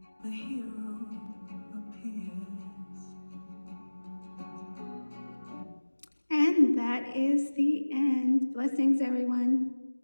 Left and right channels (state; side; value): inverted; both; correlation -1.00